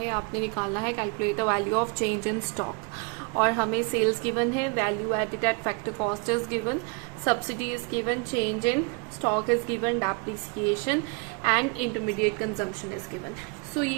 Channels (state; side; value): quieter; left; 33.7 dB